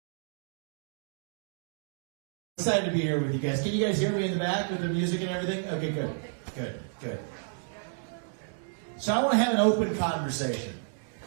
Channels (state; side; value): silent; left; digital silence